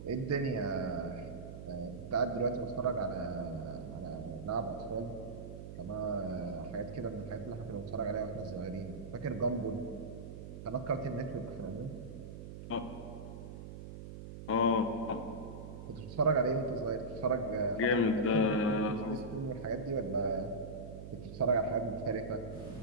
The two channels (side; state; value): right; noise; hum, 10 dB below the sound